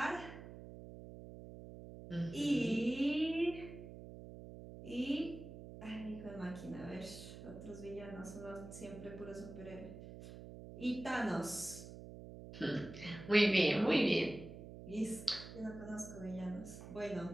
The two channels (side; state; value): right; noise; hum, 12 dB below the sound